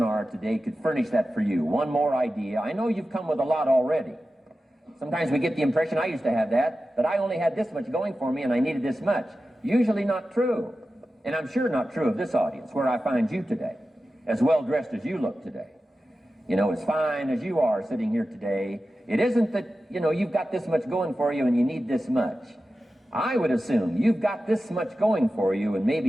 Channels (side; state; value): both; normal; correlation 0.93